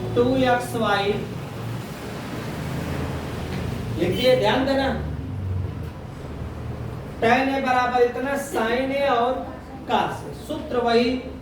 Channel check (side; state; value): both; identical; correlation 1.00